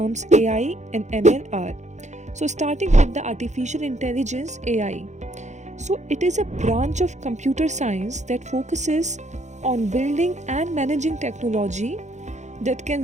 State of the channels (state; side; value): late; left; 0.34 ms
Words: AI and ML are. So starting with the artificial intelligence AI. So it is a branch of computer science that focuses on building and managing technology that